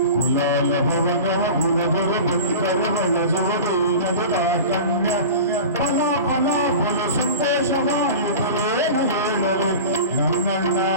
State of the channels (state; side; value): inverted; both; correlation -0.34